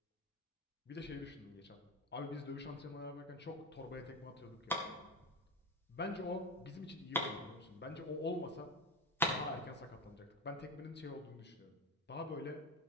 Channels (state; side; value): normal; both; correlation 0.20